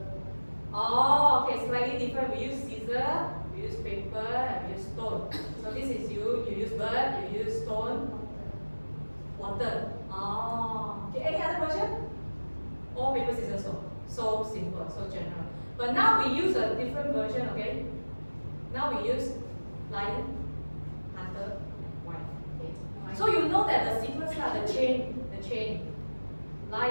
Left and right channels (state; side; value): inverted; both; correlation -1.00